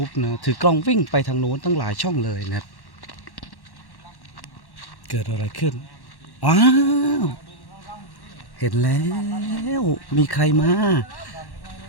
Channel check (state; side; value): late; right; 1.1 ms